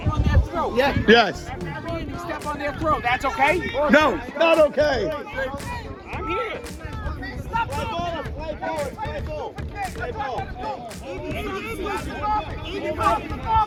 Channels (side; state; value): both; identical; correlation 1.00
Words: Yeah. Yes. Step on their throat. That's okay? No, not okay. I'm here.